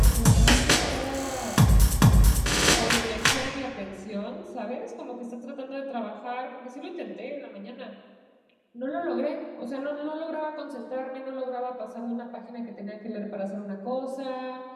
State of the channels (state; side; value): identical; both; correlation 1.00